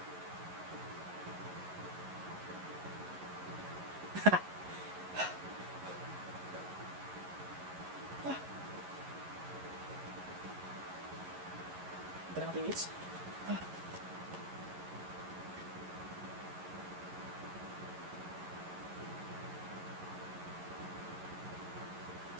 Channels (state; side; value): late; left; 11 ms